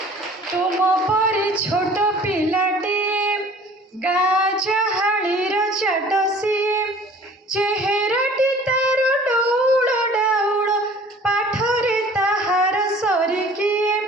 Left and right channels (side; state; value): both; normal; correlation 0.49